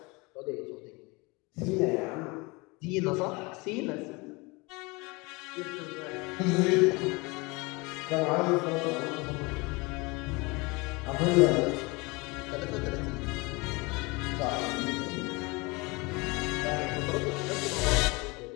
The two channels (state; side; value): quieter; right; 26.0 dB